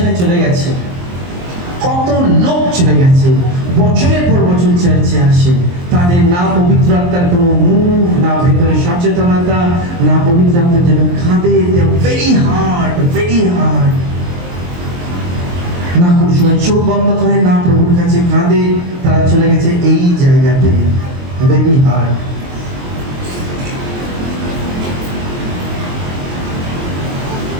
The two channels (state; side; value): late; left; 23 ms